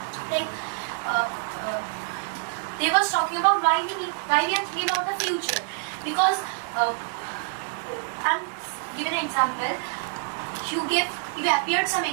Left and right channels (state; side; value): silent; left; 61 dB below the other